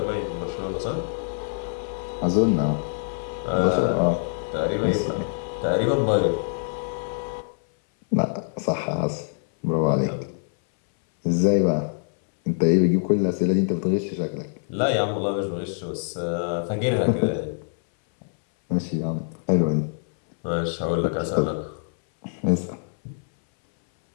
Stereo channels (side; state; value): right; silent; 62 dB below the other